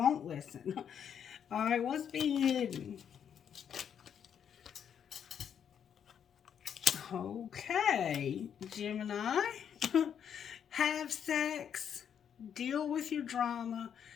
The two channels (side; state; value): right; quieter; 8.3 dB